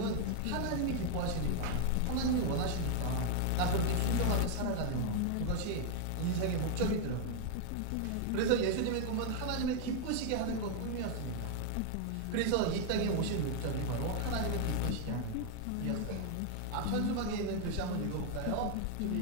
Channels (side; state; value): both; different; correlation 0.00